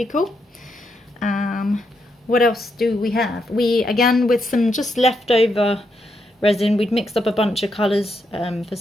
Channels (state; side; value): normal; both; correlation 0.80